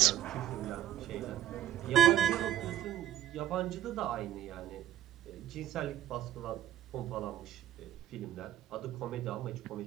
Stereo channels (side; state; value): left; quieter; 11.9 dB